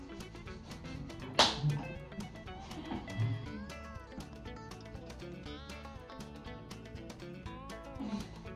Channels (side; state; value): both; identical; correlation 1.00